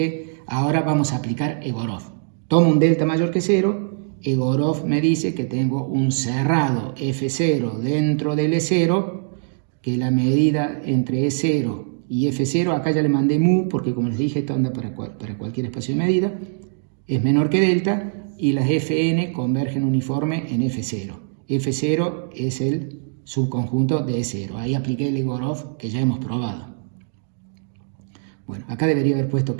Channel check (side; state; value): left; silent; digital silence